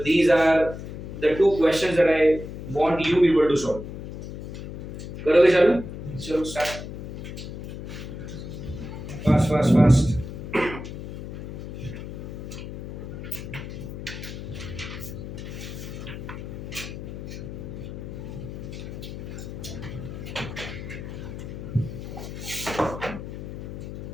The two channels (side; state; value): left; noise; hum, 9 dB below the sound